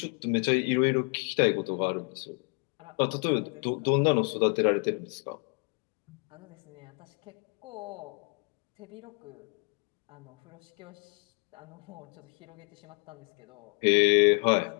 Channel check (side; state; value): right; quieter; 38.8 dB